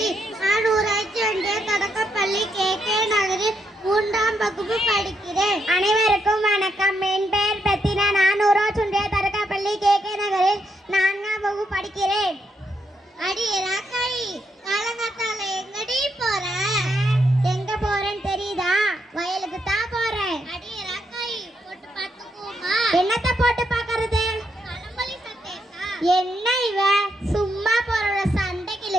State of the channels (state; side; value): normal; both; correlation 0.79